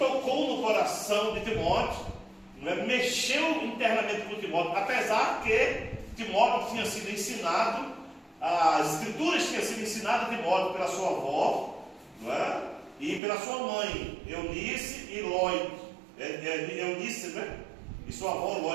no coração de Timóteo, não é? Mexeu internamente com Timóteo, apesar que Timóteo tinha sido ensinado, as escrituras tinham sido ensinadas a Timóteo pela sua avó, não é? E pela sua mãe, Eunice e Lóide. Eunice, né? E sua avó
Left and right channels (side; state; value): left; drops out; at 13.2 s